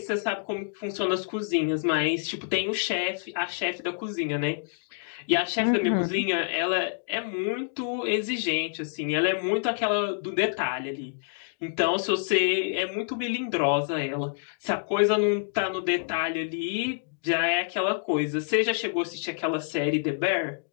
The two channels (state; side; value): silent; right; digital silence